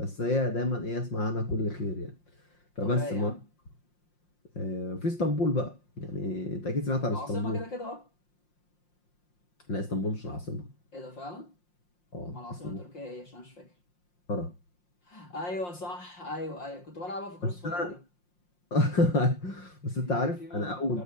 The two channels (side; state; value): right; late; 5.6 ms